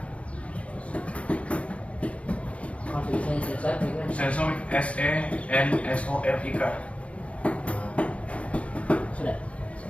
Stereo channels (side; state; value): right; late; 0.063 ms